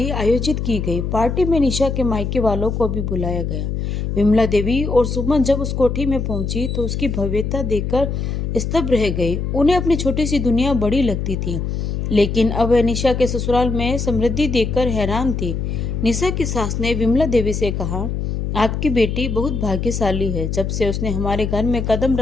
आयोजित की गई। पार्टी में निशा के मायके वालों को भी बुलाया गया। विमला देवी और सुमन जब उस कोठी में पहुंची तो उसकी भव्यता देखकर स्तब्ध रह गई। उन्हें अपनी छोटी सी दुनिया बड़ी लगती थी, लेकिन अब वह निशा के ससुराल में समृद्धि देखकर हैरान थी। निशा की सास ने विमला देवी से कहा, आपकी बेटी बहुत भाग्यशाली है। जब से उसने हमारे घर में कदम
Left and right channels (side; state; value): left; noise; hum, 2 dB below the sound